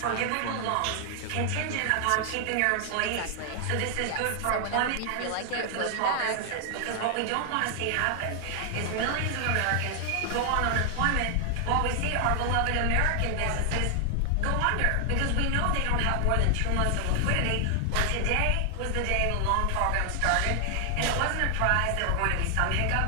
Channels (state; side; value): different; both; correlation 0.00